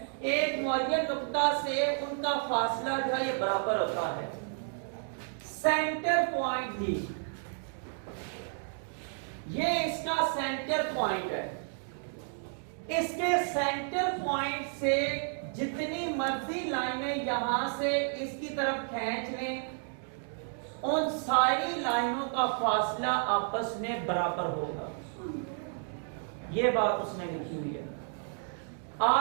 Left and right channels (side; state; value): left; silent; 57 dB below the other